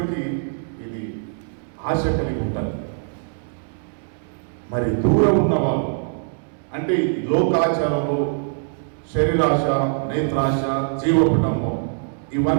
ఇది ఆశ కలిగి ఉంటారు. మరి దూరం ఉన్నవాళ్ళు అంటే లోకాచారంలో శరీరాశ, నేత్రాశ, జీవకుటుంబం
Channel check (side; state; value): left; silent; digital silence